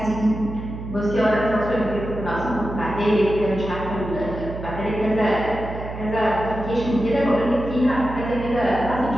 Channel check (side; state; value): right; noise; hum, 9 dB below the sound